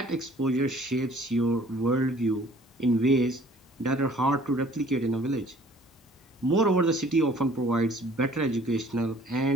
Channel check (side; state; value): both; normal; correlation 0.54